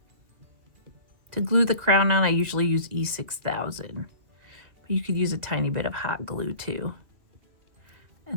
To glue the crown on, I usually use E6000. But you could use a tiny bit of hot glue too.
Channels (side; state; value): left; late; 2.4 ms